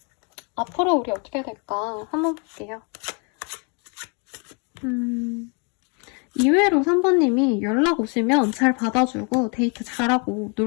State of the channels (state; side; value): quieter; right; 35.0 dB